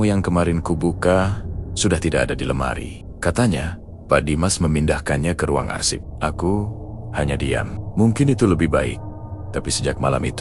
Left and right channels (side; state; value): both; identical; correlation 1.00